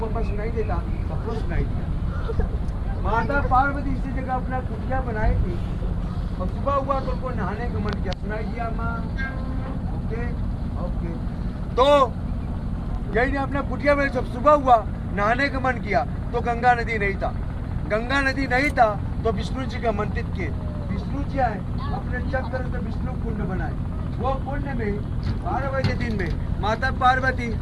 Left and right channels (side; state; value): both; identical; correlation 1.00